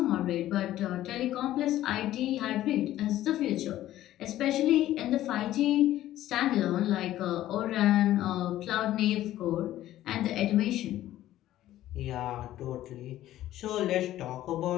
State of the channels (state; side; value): quieter; right; 13.9 dB